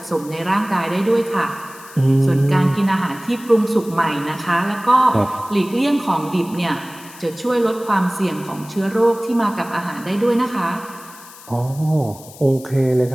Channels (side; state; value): left; noise; hiss, 19 dB below the sound